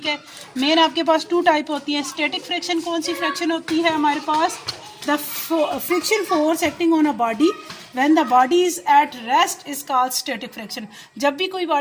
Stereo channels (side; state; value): both; identical; correlation 1.00